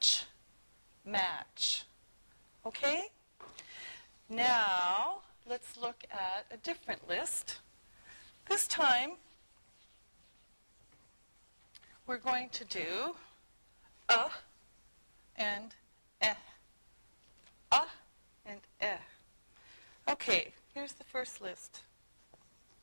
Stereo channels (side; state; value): both; inverted; correlation -1.00